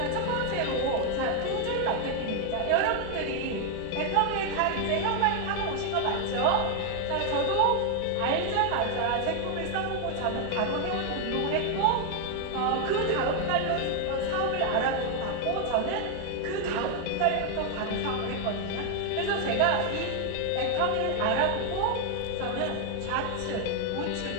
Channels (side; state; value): both; different; correlation 0.01